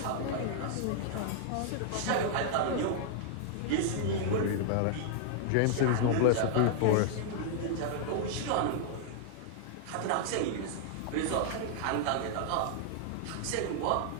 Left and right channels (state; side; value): different; both; correlation -0.01